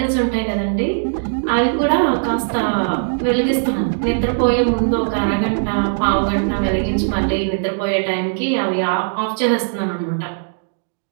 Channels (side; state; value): left; silent; digital silence